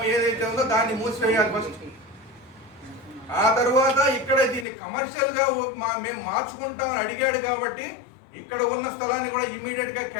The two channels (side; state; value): right; drops out; at 4.7 s